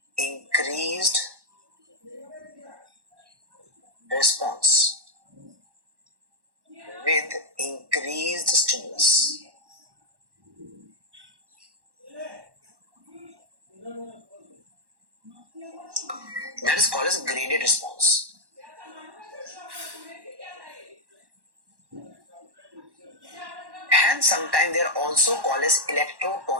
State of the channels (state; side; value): late; left; 1.1 ms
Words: increased response with increased stimulus. That is called as graded response. And sometimes they are also called as